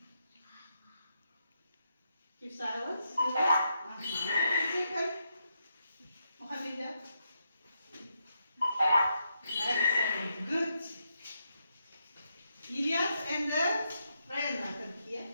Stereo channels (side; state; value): both; inverted; correlation -0.81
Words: Keep silence. Second. Mohammedia. Excellent. Good. Ilyas and the Ryan are here.